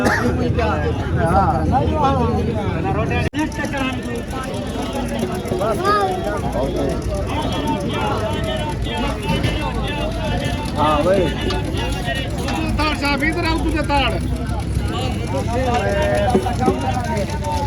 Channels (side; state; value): both; identical; correlation 1.00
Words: हाँ भाई ताड़ साहब इधर आओ तुझे ताड़